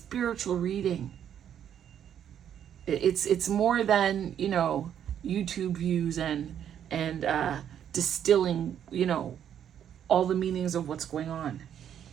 reading. It's more than, YouTube views and distilling, all the meanings of what's going on.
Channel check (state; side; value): quieter; left; 9.5 dB